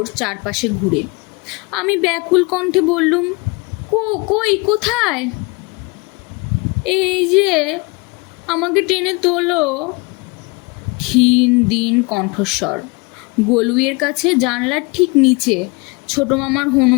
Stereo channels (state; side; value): quieter; right; 27.3 dB